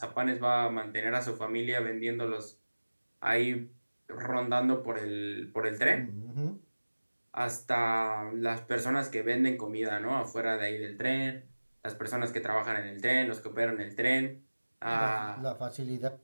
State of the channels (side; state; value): both; inverted; correlation -1.00